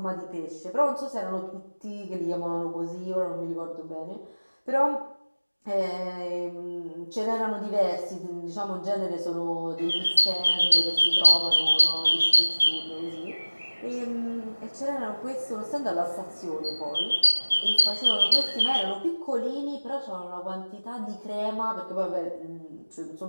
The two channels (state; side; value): inverted; both; correlation -1.00